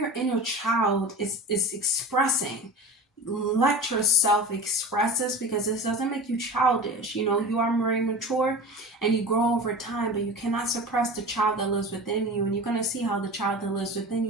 inner child is expressing, let yourself express this, because this doesn't make you childish. You are very mature and you grow over time, but you cannot suppress the child that lives within you. And you're going to see how the child that lives within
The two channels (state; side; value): normal; both; correlation 0.33